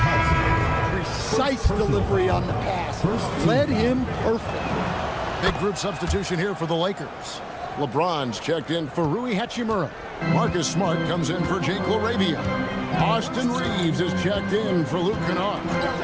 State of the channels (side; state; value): both; identical; correlation 1.00